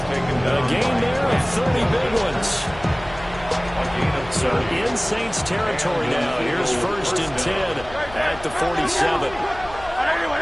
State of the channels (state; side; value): noise; left; hum, 17 dB below the sound